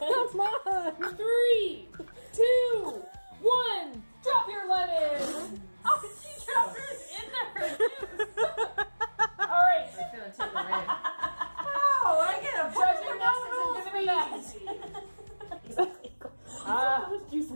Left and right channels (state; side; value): inverted; both; correlation -1.00